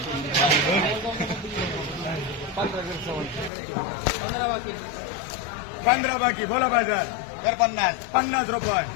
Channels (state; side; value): drops out; right; at 3.5 s